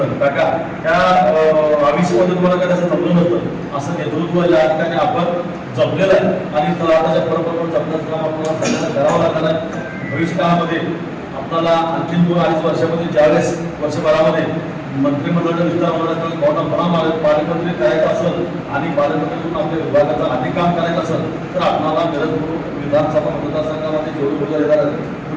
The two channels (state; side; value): identical; both; correlation 1.00